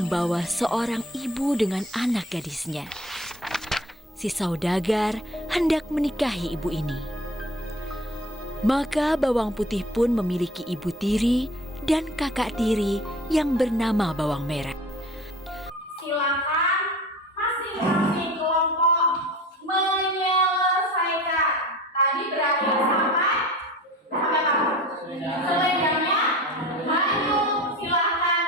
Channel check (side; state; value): both; normal; correlation 0.41